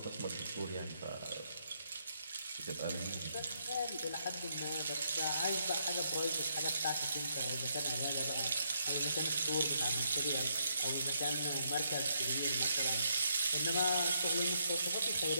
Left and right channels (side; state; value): both; inverted; correlation -0.75